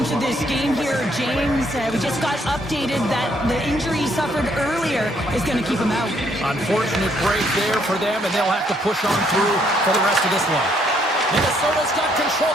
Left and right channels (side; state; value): both; normal; correlation 0.69